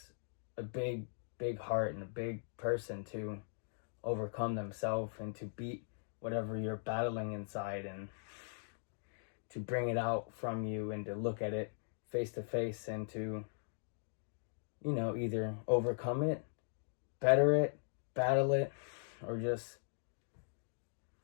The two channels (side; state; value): right; silent; digital silence